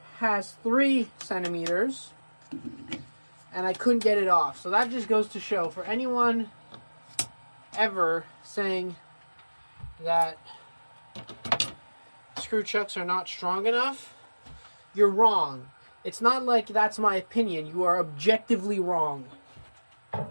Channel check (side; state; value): both; inverted; correlation -1.00